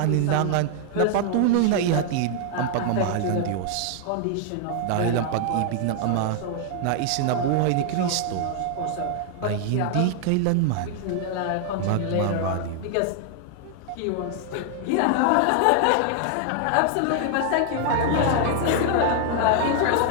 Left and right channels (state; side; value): different; both; correlation 0.00